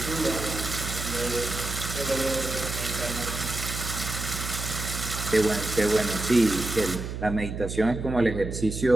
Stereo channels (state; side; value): noise; right; hum, 6 dB below the sound